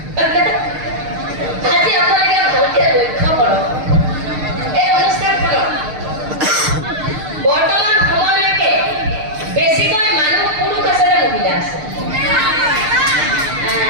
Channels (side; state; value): left; late; 6.6 ms